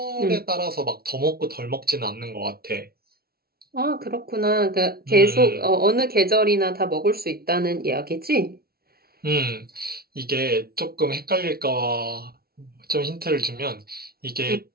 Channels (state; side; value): late; left; 0.44 ms